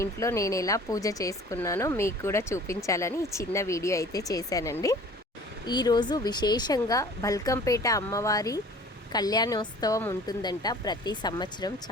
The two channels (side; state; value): both; normal; correlation 0.47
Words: ఇంట్లో నేను ఎలా పూజ చేసుకున్నానో మీకు కూడా చూపించాలని చిన్న వీడియో అయితే చేశానండి. ఈరోజు విశేషంగా బల్కంపేట అమ్మవారి కళ్యాణోత్సవం ఉంటుందంట. ప్రతి సంవత్సరం